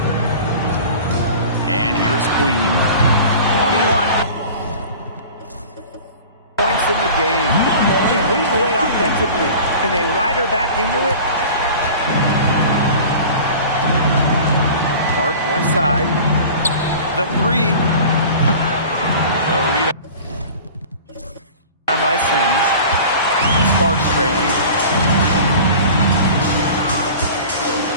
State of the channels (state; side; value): inverted; both; correlation -0.40